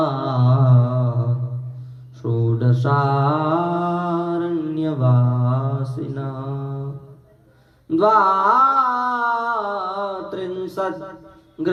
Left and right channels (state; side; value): identical; both; correlation 1.00